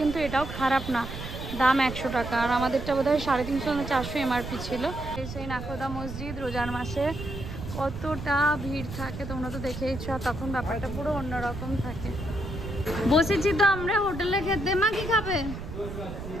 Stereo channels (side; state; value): right; noise; rumble, 8 dB below the sound